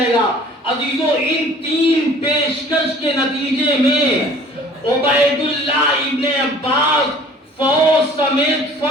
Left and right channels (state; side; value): normal; both; correlation 0.50